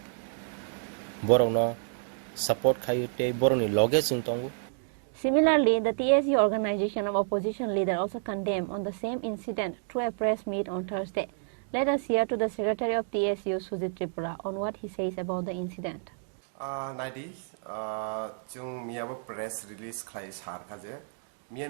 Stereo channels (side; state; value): left; silent; digital silence